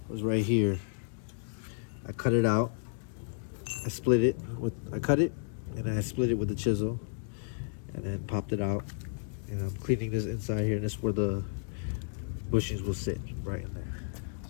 was right here. I cut it out. I cut it, and I split it with the chisel, and then popped it out. And I'm cleaning this inside here, and this is where the bushings will sit, right in there.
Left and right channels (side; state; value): right; silent; digital silence